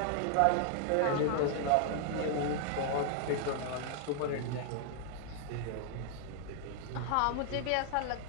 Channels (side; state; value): both; different; correlation 0.00